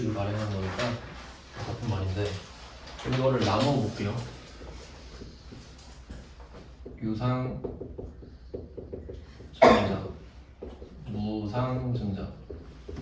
발행하는 거니까 같은 말인데, 이거를 나눠 볼게요. 유상 증자, 무상 증자,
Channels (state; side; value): identical; both; correlation 1.00